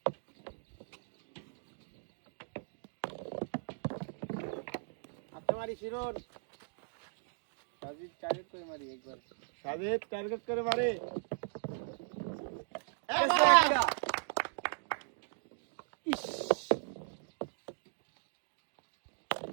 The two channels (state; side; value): silent; left; digital silence